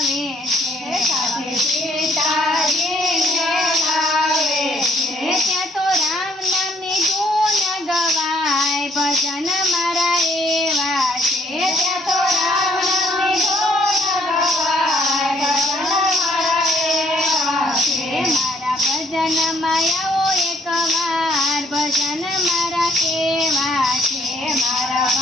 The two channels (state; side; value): normal; both; correlation 0.66